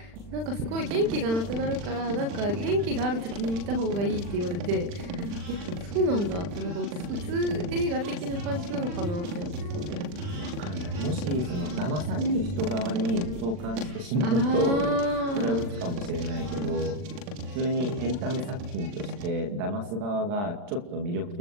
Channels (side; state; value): left; late; 40 ms